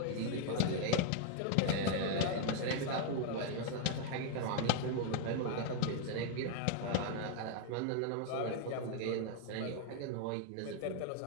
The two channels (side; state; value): both; different; correlation 0.00